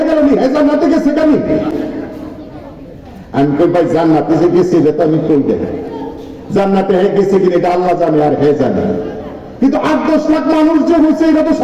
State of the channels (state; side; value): identical; both; correlation 1.00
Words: গেল জান্নাতে গেছে কেন? আমি কই ভাই জান্নাতে যে গেছে এটা তো আমি কই দেখাই, জান্নাতে হয়ে গেছে কিনা এটা আল্লাহ জানে আর হে জানে, কিন্তু 8-10 লাখ মানুষ যে হয়েছে এটা তো